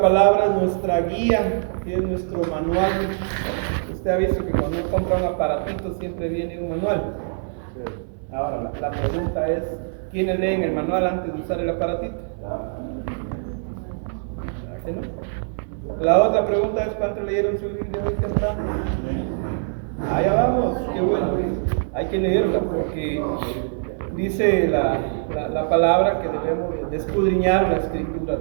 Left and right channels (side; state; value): left; silent; 63 dB below the other